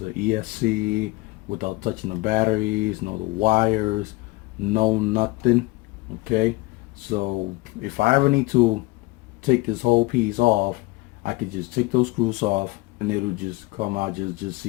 ESC, without touching the batteries, no the wires, no nothing. Okay, so if I ever need to take this whole piece off, I could just take those screws off and it'll just come out just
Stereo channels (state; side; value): quieter; right; 22.1 dB